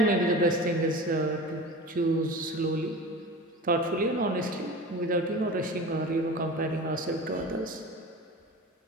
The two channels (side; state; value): both; normal; correlation 0.34